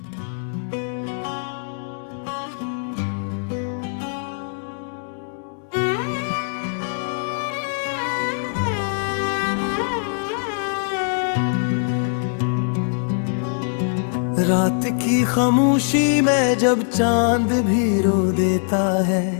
रात की खामोशी में जब चांद भी रो देता है,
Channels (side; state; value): right; silent; digital silence